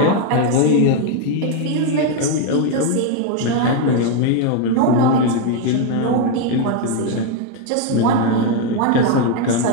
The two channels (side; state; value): both; different; correlation 0.02